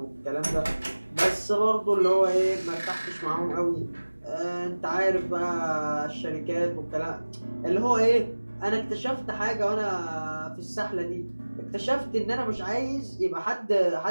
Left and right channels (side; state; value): both; inverted; correlation -1.00